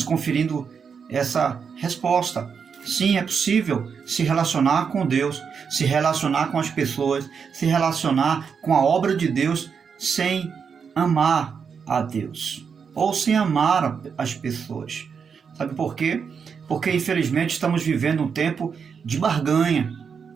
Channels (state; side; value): quieter; left; 6.3 dB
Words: conferindo essa resposta. Sim, é possível se relacionar com Deus, se relacionar com as pessoas, se relacionar com a obra de Deus sem amar a Deus ou sem amar as pessoas. Sabe por quê? Porque infelizmente estamos vivendo um tempo de barganha,